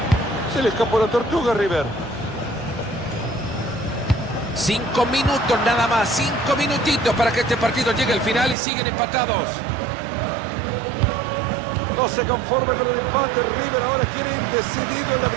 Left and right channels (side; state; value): left; drops out; at 8.6 s